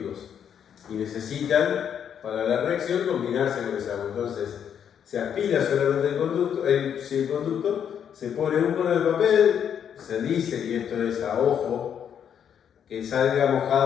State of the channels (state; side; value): quieter; right; 8.5 dB